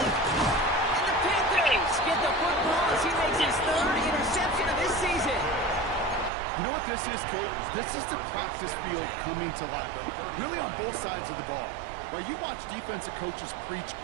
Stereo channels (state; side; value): drops out; left; at 6.3 s